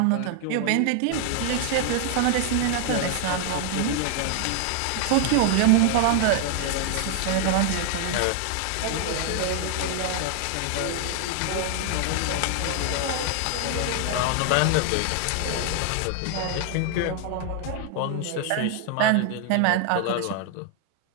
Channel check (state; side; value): different; both; correlation 0.00